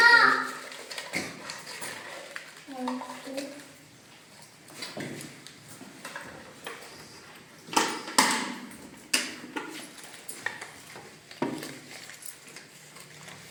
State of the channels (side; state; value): both; identical; correlation 1.00